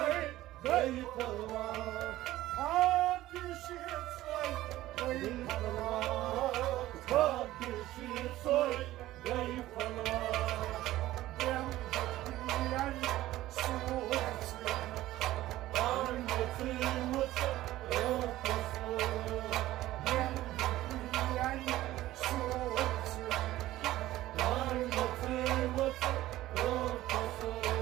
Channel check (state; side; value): quieter; left; 15.6 dB